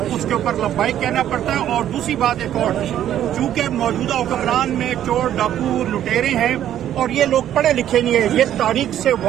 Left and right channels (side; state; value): left; quieter; 11.2 dB